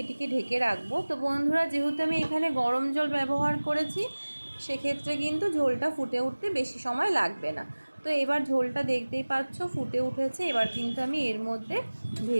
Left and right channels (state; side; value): inverted; both; correlation -1.00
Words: এটিকে ঢেকে রাখবো। তো বন্ধুরা, যেহেতু আমি এখানে গরম জল ব্যবহার করেছি, সেক্ষেত্রে কিন্তু ঝোলটা ফুটে উঠতে বেশি সময় লাগবে না। তো এবার ঝোলটা দেখতেই পাচ্ছ ফুটে উঠেছে। এবার কিন্তু আমি এর মধ্যে